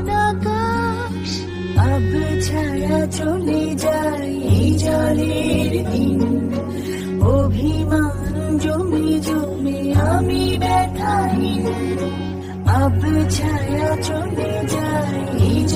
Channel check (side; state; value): both; identical; correlation 1.00